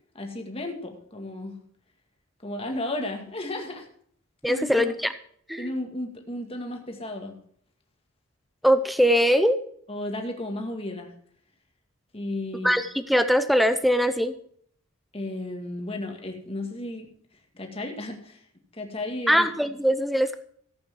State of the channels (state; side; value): normal; both; correlation 0.82